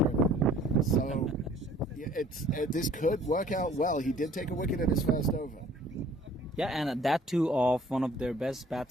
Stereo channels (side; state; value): both; normal; correlation 0.54